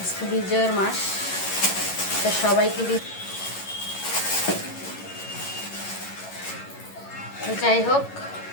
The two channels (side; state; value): right; late; 11 ms